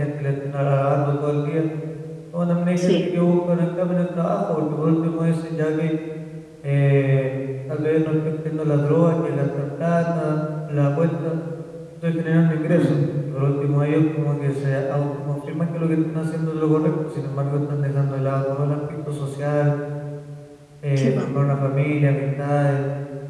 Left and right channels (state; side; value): identical; both; correlation 1.00